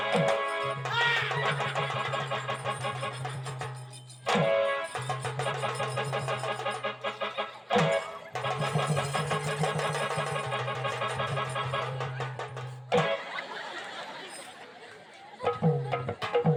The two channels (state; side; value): identical; both; correlation 1.00